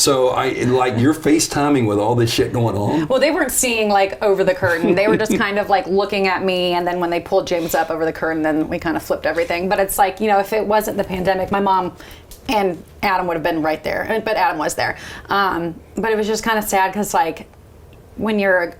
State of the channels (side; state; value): both; identical; correlation 1.00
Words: you're FaceTiming with all this shit going on? Well, they weren't seeing like over the curtain. They were just kind of like looking at me, and then when they pulled James up over the curtain, then we kind of flipped everything. But it's like, if it wasn't the pandemic, my mom and Adam would have been right there. But Adam was there. But it was just kind of sad because like, when you're